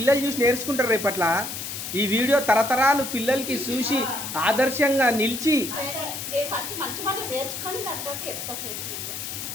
చూసి నేర్చుకుంటారు రేపట్ల. ఈ వీడియో తరతరాలు పిల్లలకి చూసి ఆదర్శంగా నిలిచి ఫస్ట్ మంచి మాట నేర్చుకొని తర్వాత చెప్తా ఫ్రెండ్స్.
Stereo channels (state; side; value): noise; left; hiss, 6 dB below the sound